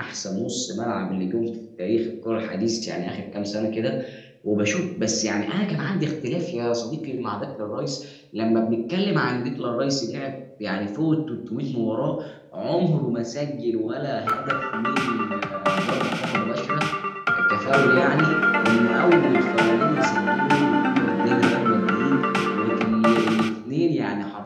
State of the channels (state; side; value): identical; both; correlation 1.00